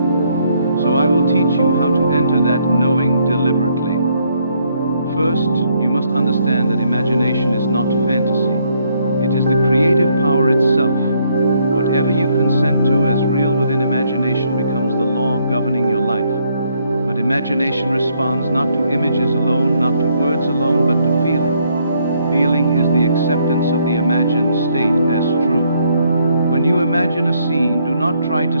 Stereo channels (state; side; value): inverted; both; correlation -0.71